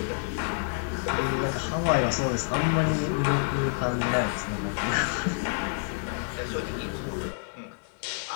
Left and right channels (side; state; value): right; silent; digital silence